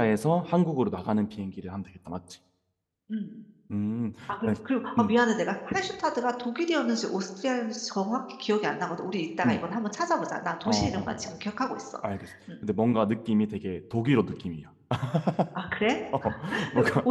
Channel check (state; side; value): identical; both; correlation 1.00